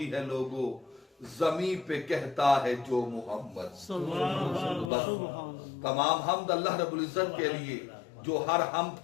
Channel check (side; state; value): right; drops out; at 4.9 s